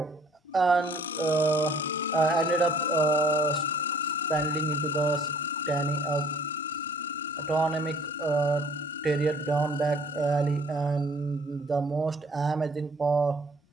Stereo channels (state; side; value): normal; both; correlation 0.56